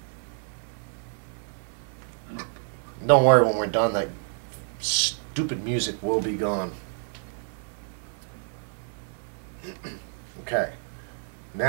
Don't worry, when we're done, that stupid music will be gone. Okay,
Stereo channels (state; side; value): silent; left; digital silence